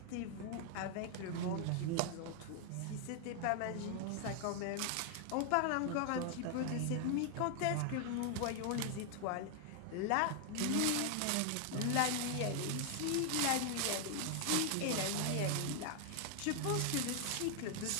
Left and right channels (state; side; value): different; both; correlation 0.00